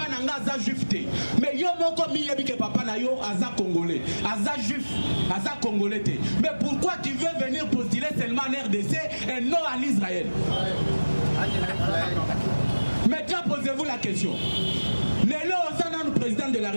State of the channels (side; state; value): both; inverted; correlation -1.00